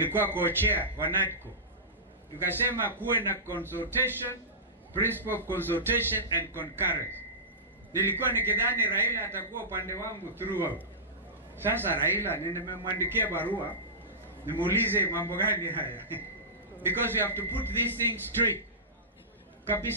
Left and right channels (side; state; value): both; normal; correlation -0.19